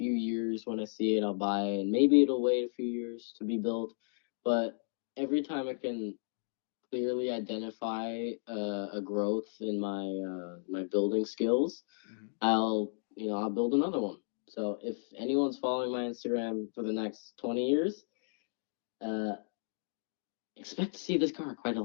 years when I see it, I'll buy it, and maybe it'll wait a few years to be built. But every time I can clearly identify a growth in my building skills, Hmm. I'll build another one. So if anyone's following my Instagram for the next 20 years, uh, expect to see this car quite a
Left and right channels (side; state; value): right; silent; digital silence